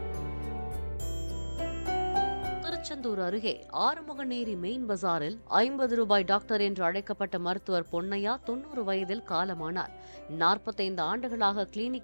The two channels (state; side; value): inverted; both; correlation -1.00